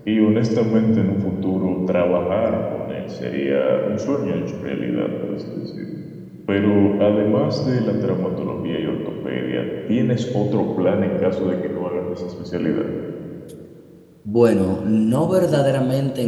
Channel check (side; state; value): both; identical; correlation 1.00